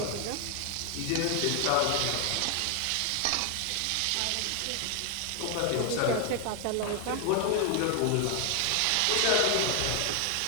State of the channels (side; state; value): both; different; correlation 0.00